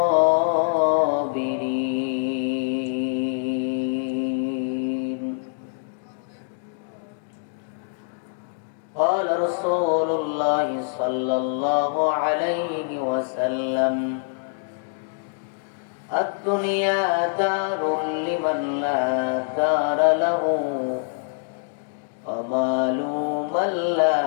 قال رسول الله صلى الله عليه وسلم: الدنيا دار لمن لا دار له ومال من لا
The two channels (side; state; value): right; silent; digital silence